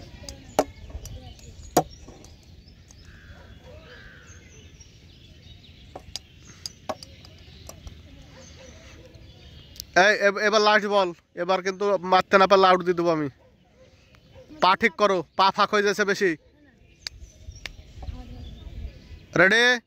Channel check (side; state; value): both; identical; correlation 1.00